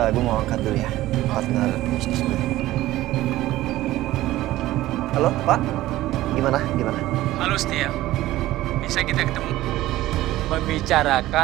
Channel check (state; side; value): quieter; left; 15.9 dB